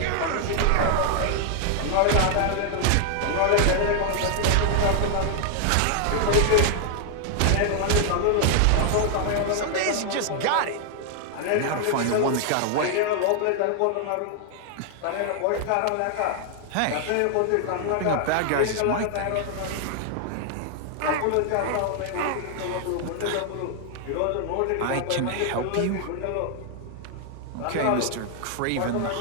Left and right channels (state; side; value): different; both; correlation 0.00